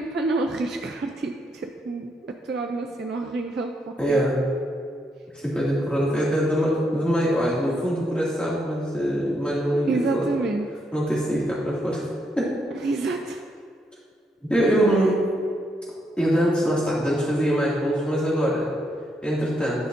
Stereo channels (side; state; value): both; normal; correlation 0.77